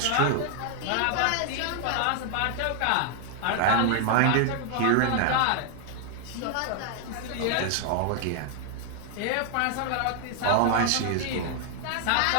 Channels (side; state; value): both; different; correlation 0.00